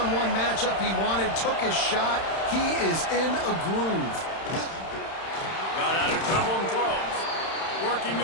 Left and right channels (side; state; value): right; late; 31 ms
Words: matchup he wanted, took his shot. He is in a groove. Got out of trouble and throws. Working